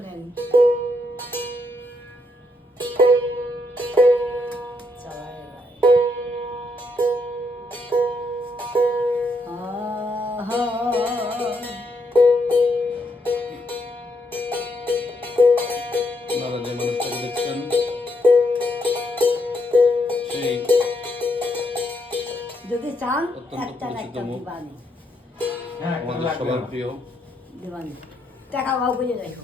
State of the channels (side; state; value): both; normal; correlation 0.77